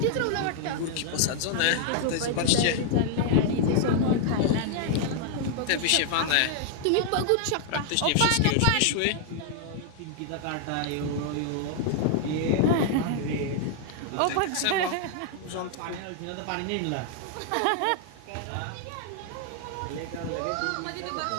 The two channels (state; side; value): different; both; correlation 0.00